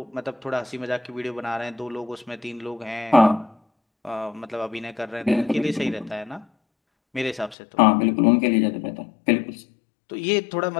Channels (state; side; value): drops out; right; at 7.6 s